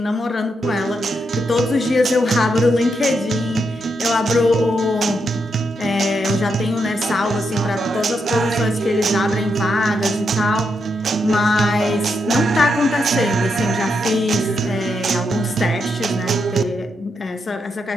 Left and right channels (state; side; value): normal; both; correlation 0.82